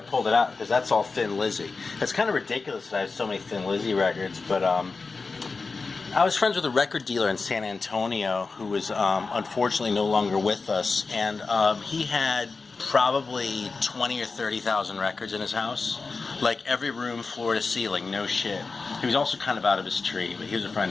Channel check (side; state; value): right; quieter; 4.2 dB